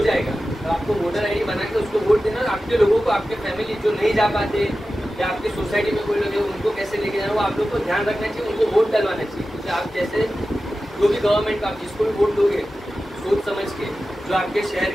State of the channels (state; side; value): normal; both; correlation 0.94